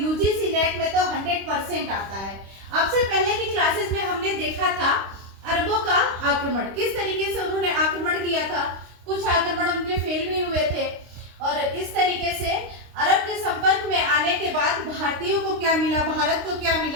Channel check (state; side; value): late; left; 26 ms